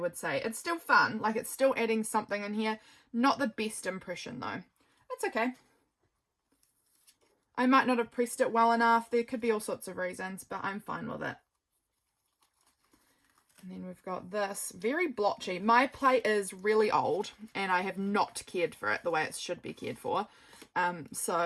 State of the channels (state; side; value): identical; both; correlation 1.00